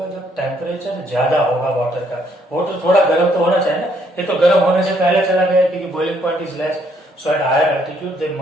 जब टेम्परेचर ज्यादा होगा वाटर का। वाटर थोड़ा गर्म तो होना चाहिए ना, ये तो गर्म होने से पहले चला गया क्योंकि boiling point is less. So at higher altitude they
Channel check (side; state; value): both; normal; correlation 0.69